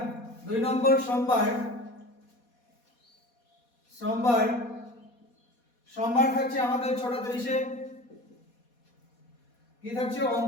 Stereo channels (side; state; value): right; late; 4.2 ms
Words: 2 নম্বর সোমবার সোমবার থাকছে আমাদের 6:30-এ কি থাকছে